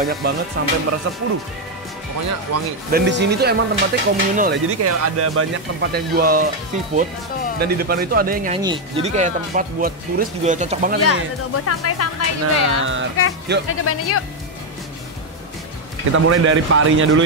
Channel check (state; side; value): normal; both; correlation 0.03